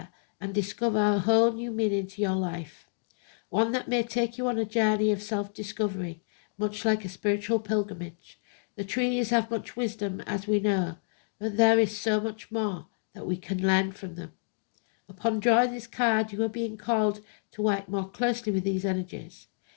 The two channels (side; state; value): right; silent; digital silence